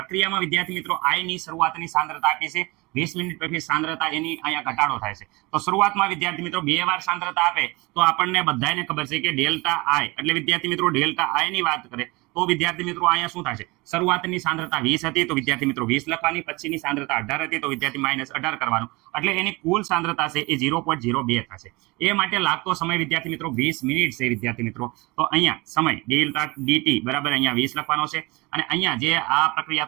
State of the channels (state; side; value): quieter; left; 24.2 dB